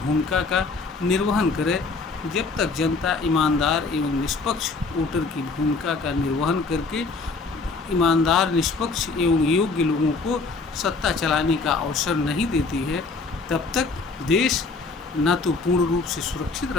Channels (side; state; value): right; quieter; 4.0 dB